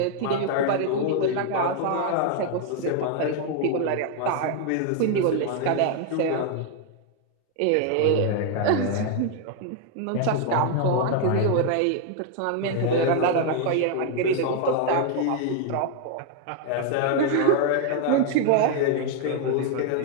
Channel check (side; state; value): both; different; correlation 0.00